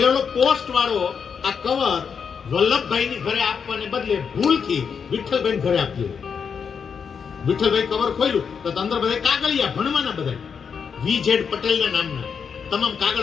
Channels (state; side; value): quieter; right; 6.5 dB